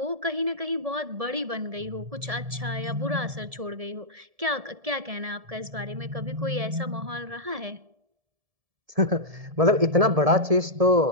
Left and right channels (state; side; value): late; left; 1.7 ms